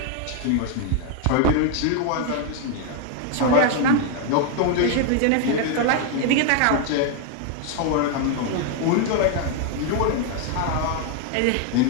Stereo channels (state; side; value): different; both; correlation 0.01